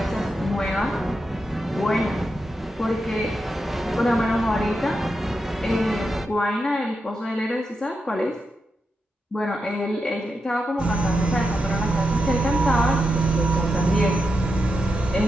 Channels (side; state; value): both; normal; correlation 0.87